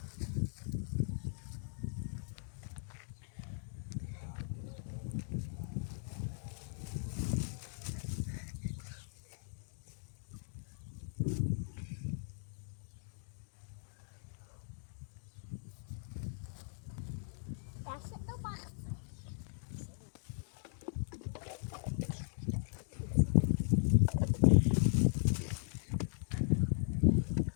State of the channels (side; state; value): right; silent; digital silence